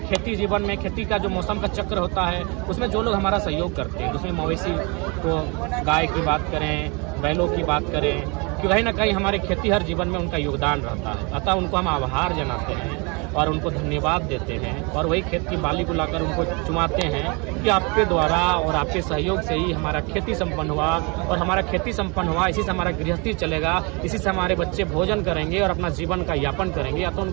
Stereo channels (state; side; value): quieter; left; 30.5 dB